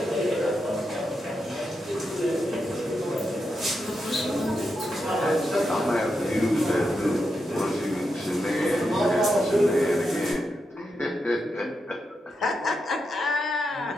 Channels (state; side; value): normal; both; correlation 0.86